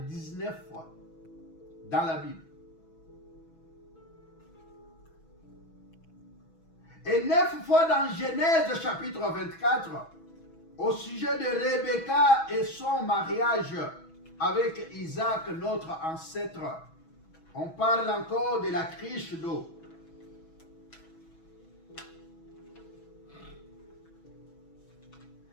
19 fois dans la Bible. Et 9 fois dans Genèse chapitre 24, au sujet de Rebecca et son mariage avec Isaac, notre ancêtre. On parle encore de la cruche d'eau.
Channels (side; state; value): right; late; 6.1 ms